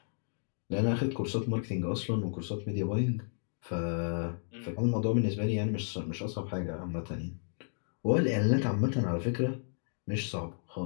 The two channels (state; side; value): silent; right; digital silence